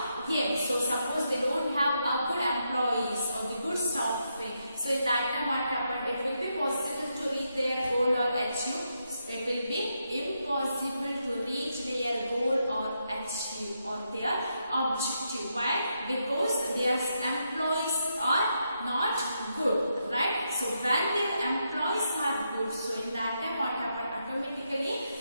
aims. So suppose they don't have a good employees or the good staffing, so in that time what happened, it will be possible to reach their goal or achieve. It will be impossible to reach their goal or achieve or their objective. Why? Because their employees are not good, right? So when their employees are good, so in that time what happened, automatically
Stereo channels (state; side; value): inverted; both; correlation -0.82